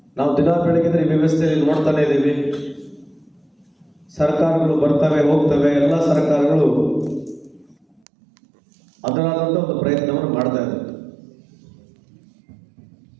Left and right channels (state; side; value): drops out; left; at 8.0 s